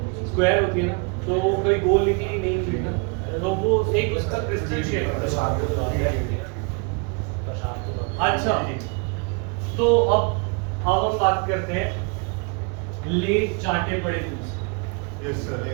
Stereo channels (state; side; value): quieter; left; 33.3 dB